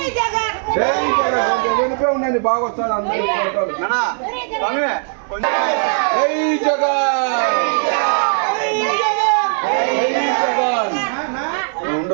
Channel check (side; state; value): left; silent; 59 dB below the other